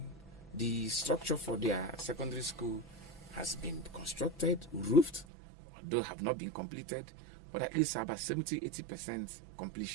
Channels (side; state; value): left; drops out; at 5.2 s